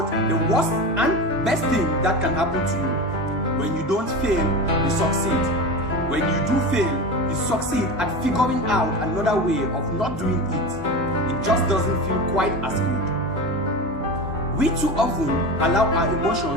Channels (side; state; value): both; normal; correlation 0.26